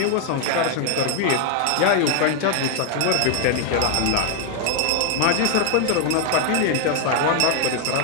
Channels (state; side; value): different; both; correlation 0.00